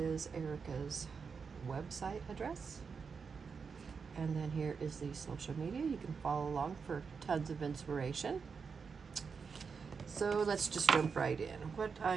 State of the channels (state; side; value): quieter; left; 5.6 dB